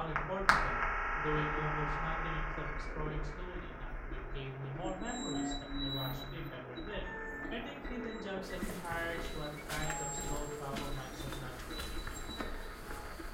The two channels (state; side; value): identical; both; correlation 1.00